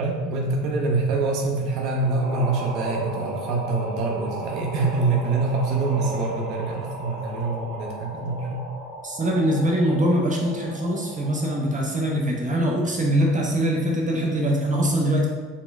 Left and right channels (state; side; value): normal; both; correlation 0.39